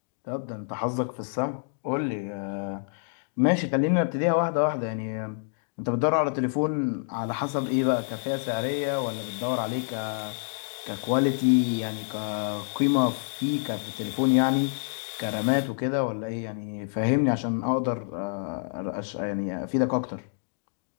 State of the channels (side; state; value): right; silent; digital silence